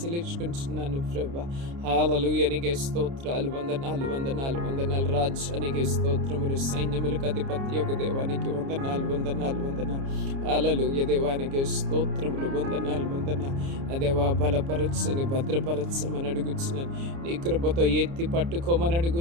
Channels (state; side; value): late; left; 29 ms